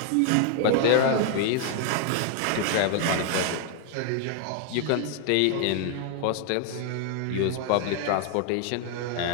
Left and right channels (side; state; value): both; different; correlation 0.00